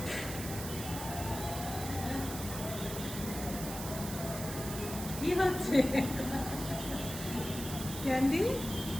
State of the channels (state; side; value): noise; right; hiss, 8 dB below the sound